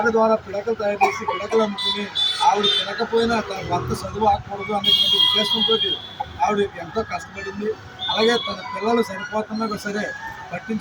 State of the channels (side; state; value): both; identical; correlation 1.00